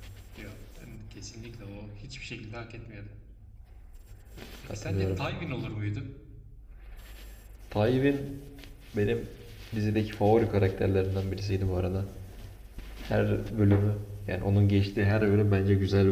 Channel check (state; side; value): identical; both; correlation 1.00